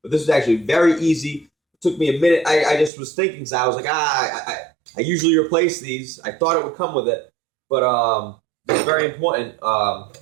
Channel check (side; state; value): left; drops out; at 2.9 s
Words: But this is actually very easy. It took me a minute. I just was thinking, so I was like, I usually replace these. I thought it would come with it, but it's very important.